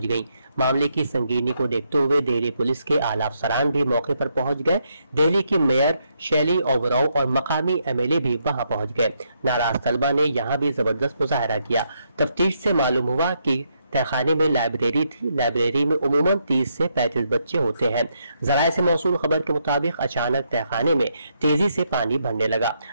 गईं। मामले की संगीनी को देखते हुए दिल्ली पुलिस के आला अफसरान भी मौके पर पहुंच गए। दिल्ली की मेयर शैली ओबरॉय और मकामी MLA भी वहां पहुंच गए। नाराज तलबा ने यहां भी जबरदस्त मुजाहरा किया। तफ्तीश से मालूम हुआ कि तहखाने में लाइब्रेरी थी। लाइब्रेरी में उमूमन 30 से 35 बच्चे होते हैं। ज़राए से मौसूल खबर के मुताबिक अचानक तहखाने में तेजी से पानी भरने लगा।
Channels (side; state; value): both; inverted; correlation -0.77